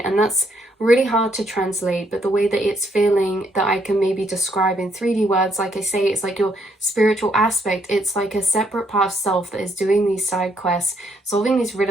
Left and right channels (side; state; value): both; normal; correlation 0.72